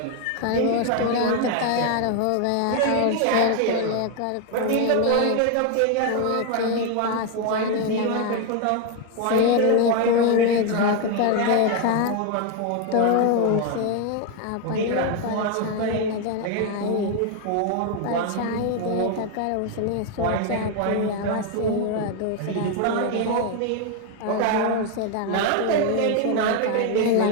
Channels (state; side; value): different; both; correlation 0.01